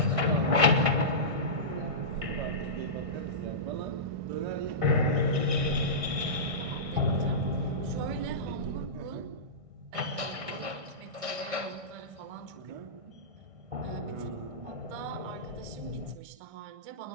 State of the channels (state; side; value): late; left; 1.6 ms